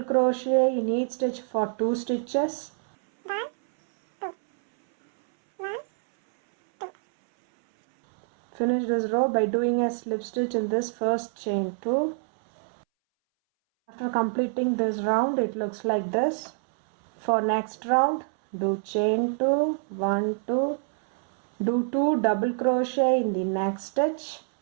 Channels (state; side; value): silent; left; 61 dB below the other